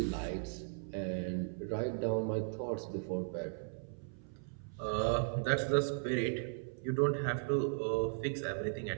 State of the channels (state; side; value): silent; left; 53 dB below the other